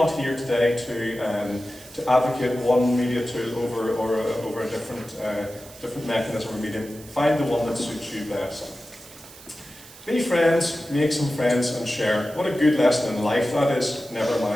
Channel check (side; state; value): right; noise; hiss, 19 dB below the sound